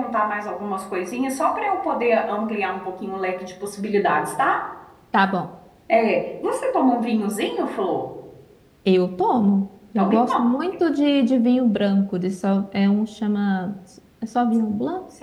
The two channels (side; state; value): both; identical; correlation 1.00